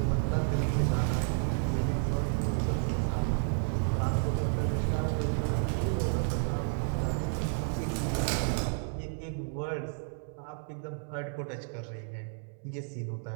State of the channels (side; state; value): left; silent; 57 dB below the other